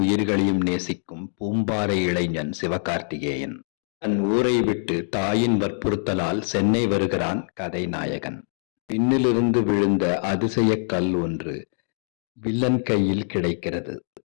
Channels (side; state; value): right; silent; digital silence